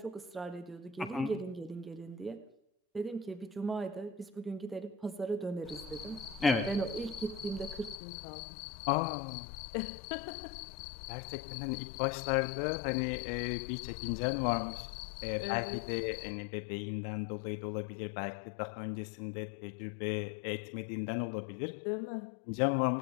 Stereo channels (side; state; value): right; drops out; at 8.0 s